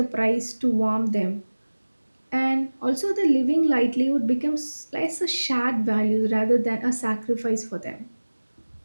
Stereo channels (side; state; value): both; inverted; correlation -1.00